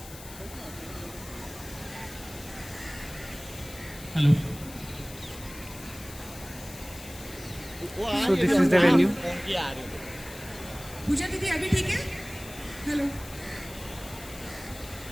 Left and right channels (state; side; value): noise; left; hiss, 15 dB below the sound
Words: hello. So this is the venue. Puja दीदी अभी ठीक है? हेलो.